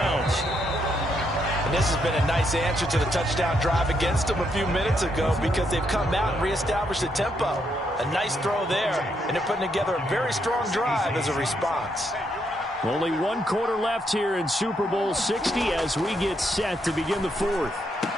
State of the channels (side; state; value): both; normal; correlation 0.77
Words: And this has been a nice answer to the touchdown drive against them a few minutes ago, because they've come out and reestablished the tempo. A nice throw there, and they're putting together a very strong drive as a response. Only 1 quarter left here in Super Bowl 60 as we get set to begin the 4th.